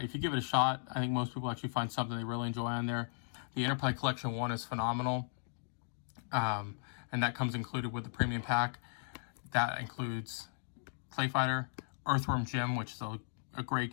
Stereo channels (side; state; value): right; silent; digital silence